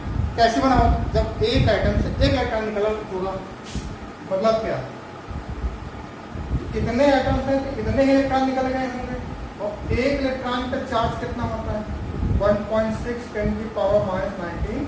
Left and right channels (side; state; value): both; identical; correlation 1.00